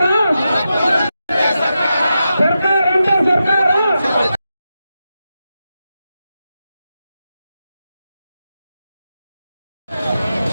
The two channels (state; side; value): inverted; both; correlation -0.89